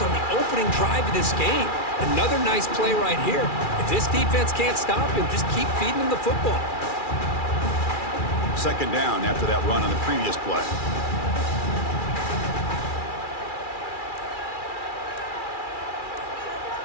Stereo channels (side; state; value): right; late; 2.4 ms